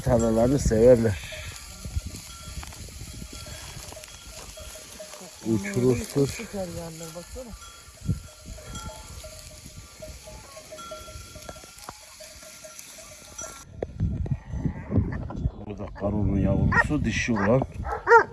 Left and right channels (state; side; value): identical; both; correlation 1.00